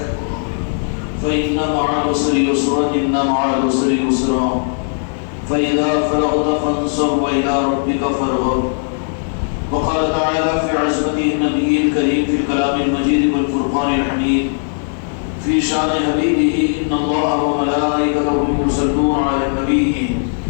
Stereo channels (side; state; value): right; silent; 68 dB below the other